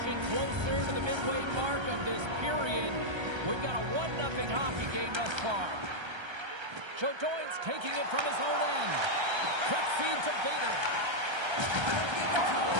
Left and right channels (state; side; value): late; left; 1.3 ms